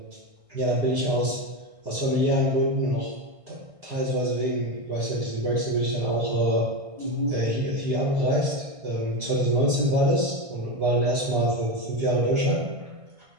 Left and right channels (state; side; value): late; left; 1.6 ms